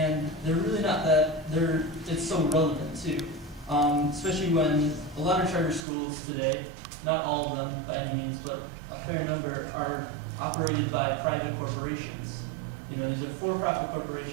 they're really not it's so relevant too. Especially when a lot of charter schools today, not all of them by any means, but a fair number are operated by private corporations. These are for-profit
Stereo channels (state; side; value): drops out; left; at 5.8 s